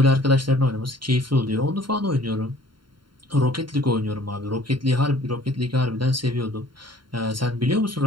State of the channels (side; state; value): left; late; 0.72 ms